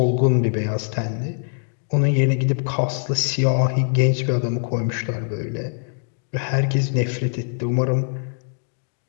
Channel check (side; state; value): right; silent; digital silence